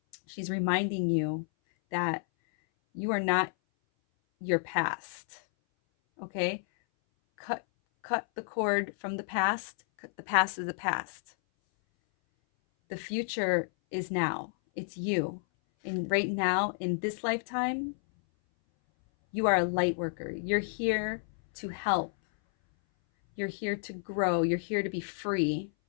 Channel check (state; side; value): silent; right; 57 dB below the other